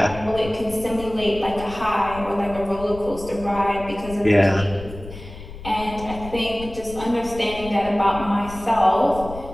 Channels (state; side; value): noise; left; rumble, 13 dB below the sound